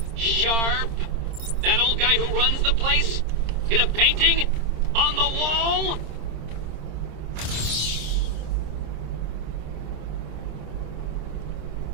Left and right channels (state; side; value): late; left; 26 ms